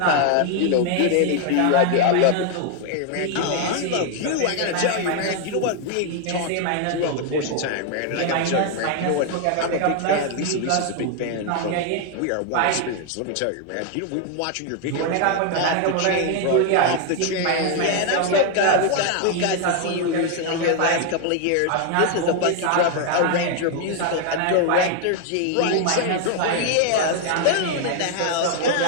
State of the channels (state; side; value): different; both; correlation 0.00